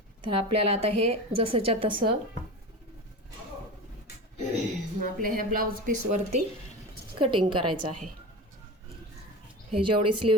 तर आपल्याला आता हे जसंच्या तसं आपल्या ह्या ब्लाऊज पीसवरती कटिंग करायचं आहे. हे जेवढी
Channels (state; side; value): normal; both; correlation 0.29